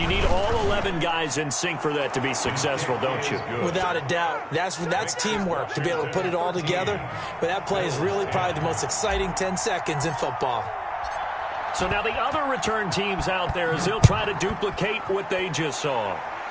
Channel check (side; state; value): both; identical; correlation 1.00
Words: need all 11 guys in sync for that to be successful, don't you? Without a doubt. That's teamwork, to be able to put it all together. But that play is really probably the most exciting 10 seconds in football. So now the other return teams out there as they'll try to duplicate what they just saw.